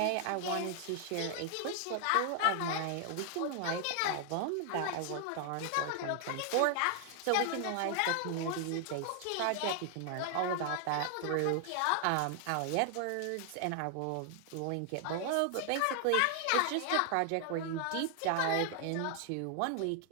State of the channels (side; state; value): both; different; correlation 0.00